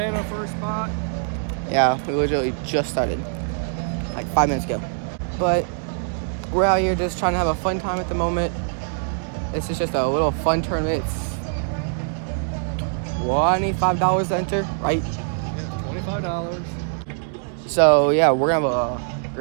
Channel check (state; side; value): silent; left; digital silence